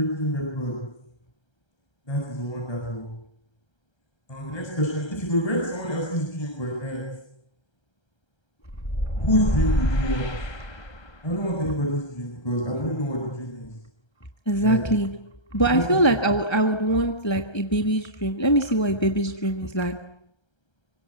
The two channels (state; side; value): late; right; 1.3 ms